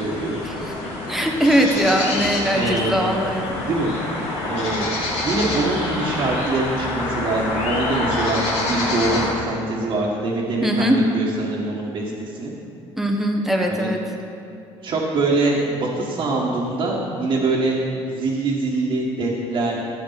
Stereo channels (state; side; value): normal; both; correlation 0.55